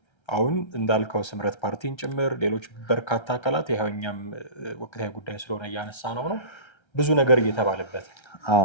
አሁን እንዳልከው ስምረት ፓርቲን ጭምር ሌሎች በርካታ አካላት ይኸው እኛም ወቅታዊ ጉዳይ ስለሆነ እያነሳ ነው ብዙ ነገር እየተባለበት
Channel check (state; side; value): late; right; 1.3 ms